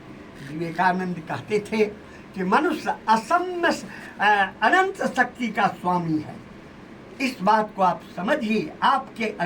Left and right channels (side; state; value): both; identical; correlation 1.00